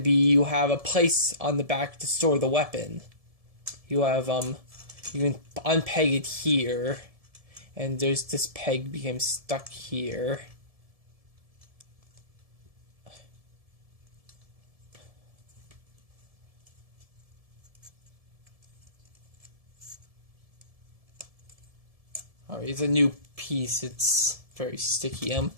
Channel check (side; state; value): left; late; 1.7 ms